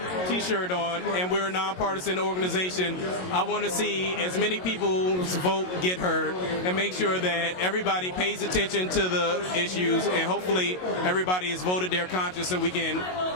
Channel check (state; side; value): late; right; 22 ms